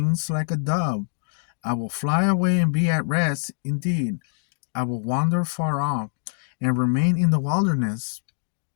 like a dove! I will fly away and be at rest. Indeed, I will wander far off and remain in the wilderness."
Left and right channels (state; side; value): silent; right; digital silence